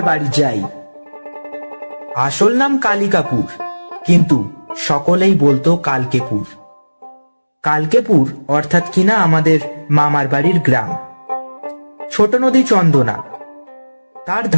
বাড়ি যাই। আসল নাম কালিকাপুর, কিন্তু সকলেই বলতো কালকেপুর। কালকেপুর অর্থাৎ কিনা আমাদের মামার বাড়ির গ্রাম। ছোট নদী চন্দনা, তার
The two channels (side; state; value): both; inverted; correlation -1.00